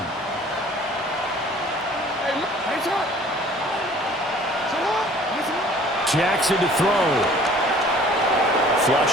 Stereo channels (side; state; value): both; normal; correlation 0.51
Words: Jackson to throw.